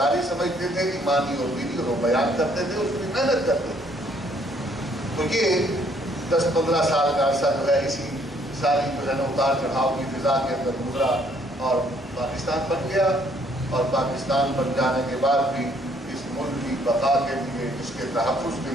سمجھتے تھے, ایمانی اور دینی, اور وہ بیان کرتے تھے, اس کی محنت کرتے تھے. تو یہ 10-15 سال کا عرصہ جو ہے اسی ساری جو ہے نا اتار چڑھاؤ کی فضا کے اندر گزرا اور پاکستان بن گیا. اور پاکستان بن جانے کے بعد بھی اس ملک کی بقا کے لیے, اس کے تحفظ کے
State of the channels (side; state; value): both; normal; correlation 0.65